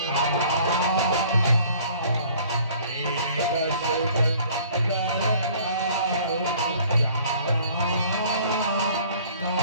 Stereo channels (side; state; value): both; inverted; correlation -0.54